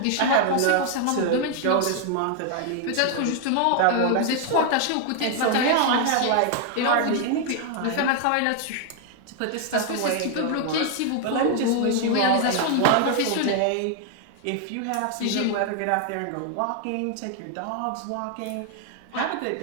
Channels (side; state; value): both; different; correlation 0.00